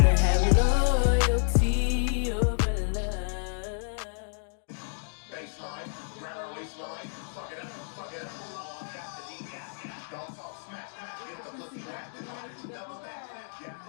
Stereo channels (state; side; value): silent; right; digital silence